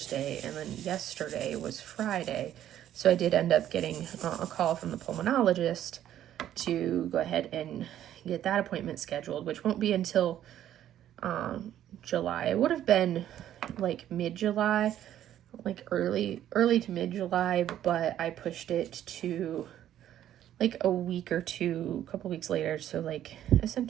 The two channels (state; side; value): quieter; left; 11.5 dB